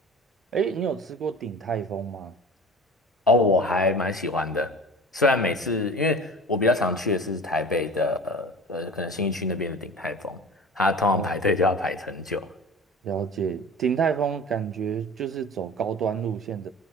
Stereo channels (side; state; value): both; normal; correlation 0.38